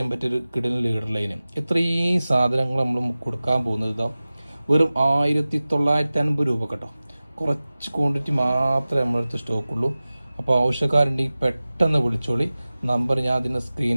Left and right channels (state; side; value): inverted; both; correlation -0.97